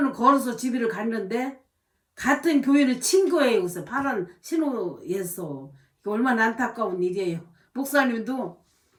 걸어서 집을 갔는데 같은 교인을 친 거예요. 그래서 파란 신호에서. 얼마나 안타까운 일이에요. 목사님도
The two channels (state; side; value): identical; both; correlation 1.00